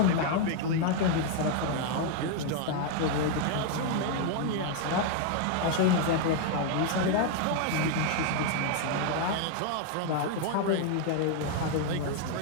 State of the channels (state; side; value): different; both; correlation 0.00